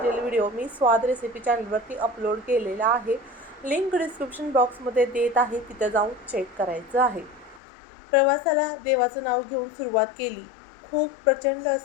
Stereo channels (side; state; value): right; drops out; at 7.6 s